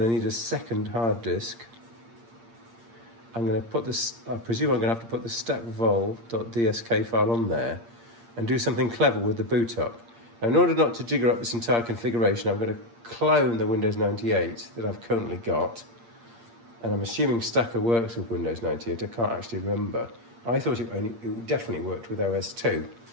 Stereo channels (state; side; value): late; left; 8.6 ms